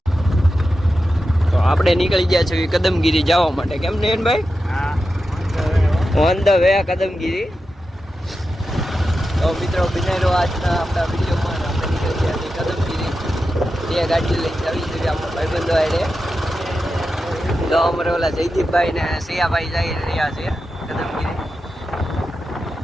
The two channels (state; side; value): normal; both; correlation 0.90